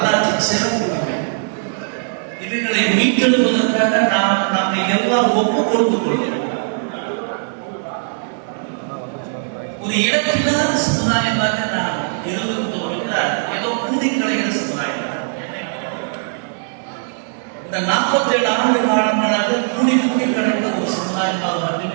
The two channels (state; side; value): silent; left; digital silence